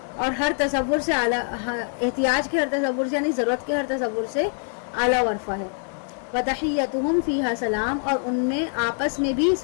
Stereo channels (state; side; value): silent; right; 57 dB below the other